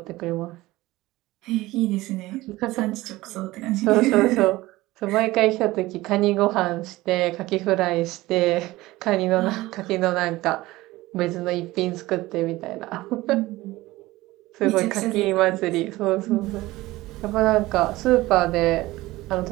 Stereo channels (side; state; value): left; quieter; 18.6 dB